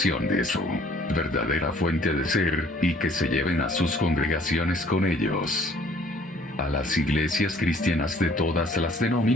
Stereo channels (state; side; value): normal; both; correlation 0.57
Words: de su verdadera fuente de ser, y que se lleven a sus congregaciones con ellos. A las iglesias cristianas de todas las